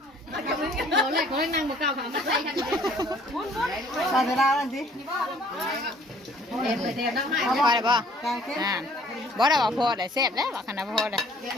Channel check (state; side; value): normal; both; correlation 0.57